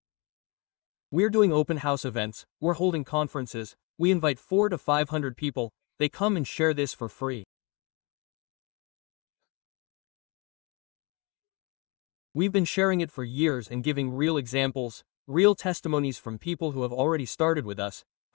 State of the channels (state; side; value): quieter; right; 29.6 dB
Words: We're doing open house events, we're holding conferences, we invite 400 to 500 people, they come and share this for free. We've been sharing it for years and giving real examples, real testimonies from people who have already started with us,